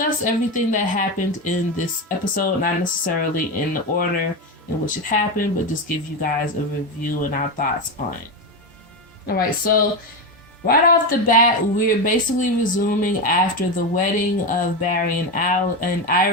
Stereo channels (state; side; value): normal; both; correlation 0.15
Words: everything that happened in this episode, not necessarily in the order in which it happened, but just give you guys a review and our thoughts on it. Alright, so right off the bat, we're basically resuming after the wedding of Barry and